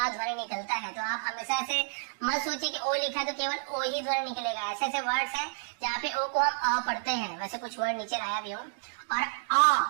ध्वनि निकलता है। तो आप हमेशा से मत सोचिए कि ओ लिखा तो केवल ओ ही ध्वनि निकलेगा। ऐसे ऐसे वर्ड्स है जहाँ पे ओ को हम अ पढ़ते हैं, वैसे कुछ वर्ड नीचे लाया भी हूँ। और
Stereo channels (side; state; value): left; silent; digital silence